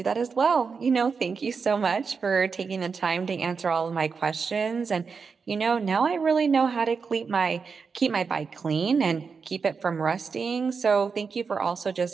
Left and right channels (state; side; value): quieter; left; 5.3 dB